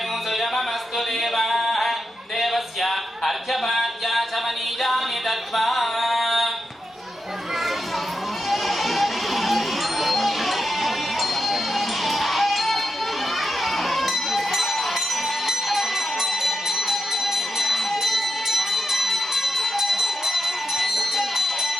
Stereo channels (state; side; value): normal; both; correlation 0.87